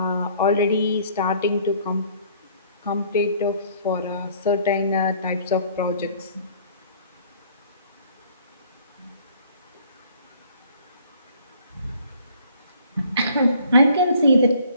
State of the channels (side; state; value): both; inverted; correlation -0.57